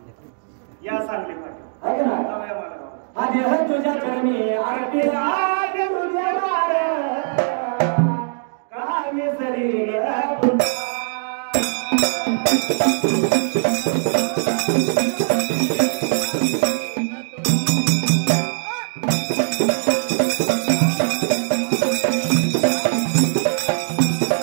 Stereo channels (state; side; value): silent; left; digital silence